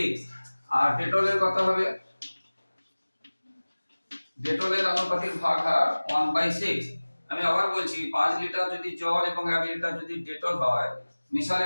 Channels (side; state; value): both; inverted; correlation -1.00